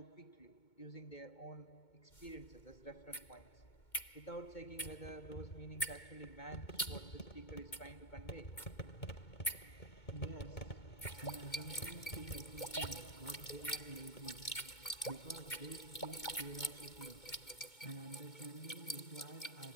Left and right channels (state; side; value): late; right; 2.2 ms